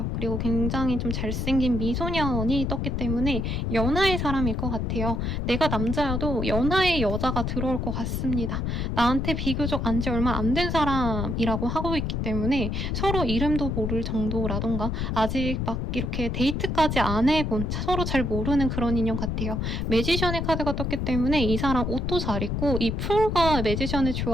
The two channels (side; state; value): left; noise; rumble, 1 dB below the sound